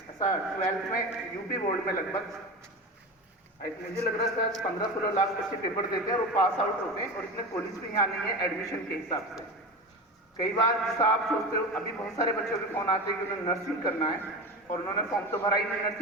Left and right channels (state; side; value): normal; both; correlation 0.26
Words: ऐसा 12th में यूपी बोर्ड में लगभग मुझे लग रहा है 15-16 लाख बच्चे पेपर देते हैं और वो पास आउट होते हैं, और इसमें कॉलेज भी यहाँ नहीं है एडमिशन के हिसाब से। कई बार जैसा आप सोचते हो, अभी बहुत सारे बच्चों के फोन आते हैं कि उन्हें नर्सिंग करना है और उन्होंने फॉर्म तो भरा ही नहीं